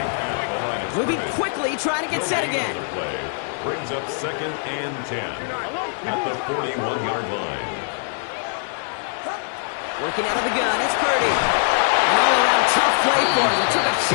Moving quickly, trying to get set again. Brings up 2nd and 10 at the 41-yard line. Working out of the gun, it's Purdy. An all-around tough play for him. He took a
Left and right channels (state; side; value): silent; right; digital silence